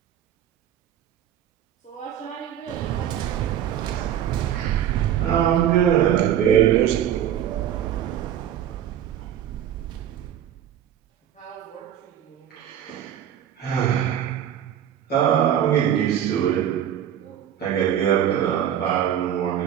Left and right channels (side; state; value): left; quieter; 10.2 dB